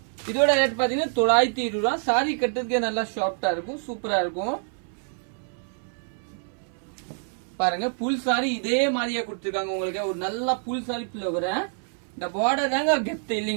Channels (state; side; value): silent; left; 61 dB below the other